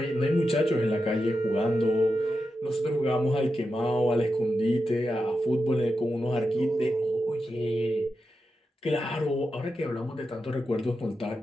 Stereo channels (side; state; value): both; normal; correlation 0.89